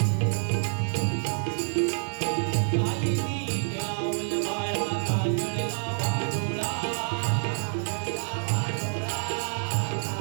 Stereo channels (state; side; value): silent; left; digital silence